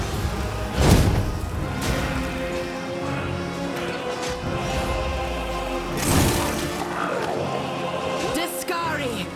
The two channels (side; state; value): both; identical; correlation 1.00